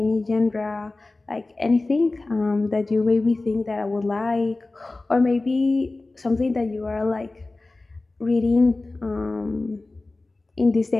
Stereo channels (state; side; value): quieter; right; 3.2 dB